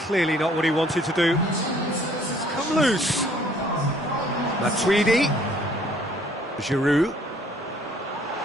not what he wanted to do. It's come loose. Matuidi. Giroud.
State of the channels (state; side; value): normal; both; correlation 0.59